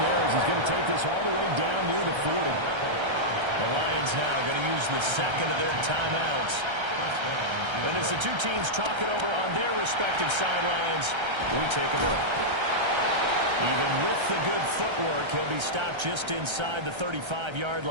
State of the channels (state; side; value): late; left; 1.3 ms